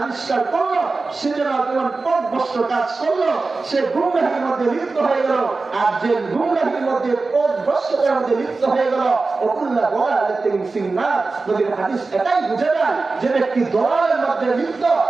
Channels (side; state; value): left; quieter; 3.8 dB